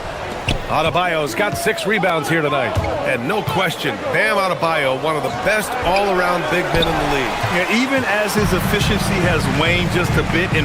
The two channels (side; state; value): both; identical; correlation 1.00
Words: Adebayo's got 6 rebounds here tonight. And no question, Bam Adebayo, one of the best all-around big men in the league. Yeah, even as his efficiency has waned just a bit